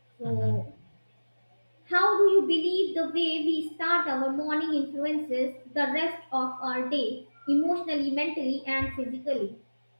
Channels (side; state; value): both; inverted; correlation -1.00